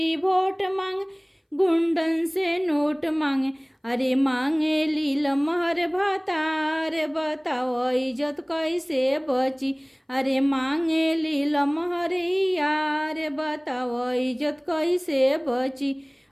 वोट मांगे, गुंडन से नोट मांगे। अरे मांगे लील महर भातार, बताओ इज्जत कैसे बची। अरे मांगे लील महर यार, बताओ इज्जत कैसे बची।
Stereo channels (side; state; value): both; identical; correlation 1.00